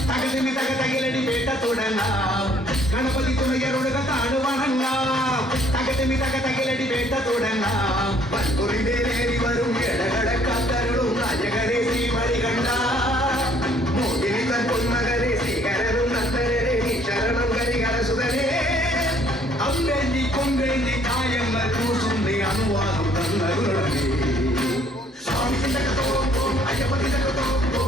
ತಗದಿನಿ ತಗ ತಗಿಲಡಿ ಬೇಟ ತೊಡಂಗ ಗಣಪತಿ ತುಣಯರುಡುಗ ತಾಣುವಣಂಗ ತಗದಿನಿ ತಗ ತಗಿಲಡಿ ಬೇಟ ತೊಡಂಗ ಬಂಗುರಿದೇರಿ ವரும் ಎಡಗಡ ಕಾತರುಳು ರಾಜಗರೇ ಶ್ರೀಮಣಿಗಂಡ ಮೋಗಿನಿ ತನ್ பொன்மகரே ಶ್ರೀಗರರು ನಂತರೇ ನೀ ಶರಣಂ ಗರಿಗರ ಸುಧರೇ ಅಂಬೆಂದಿ ಕೊಂಬೆಂದಿ ಕಾಯಮ್ಮ ಕೂಸುಂದಿ ಅನುವಾದು ತನ್ನರುಳಗೆ ಸ್ವಾಮಿ ತಿಂದಕತೋ ಅಯ್ಯಪ್ಪ ತಿಂದಕತೋ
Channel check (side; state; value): both; normal; correlation 0.62